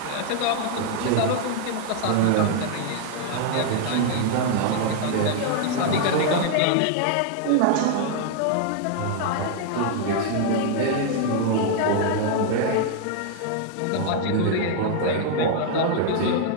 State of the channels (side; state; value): both; different; correlation 0.00